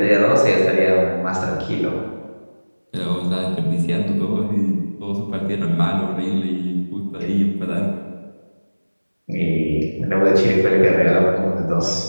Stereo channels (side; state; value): both; inverted; correlation -1.00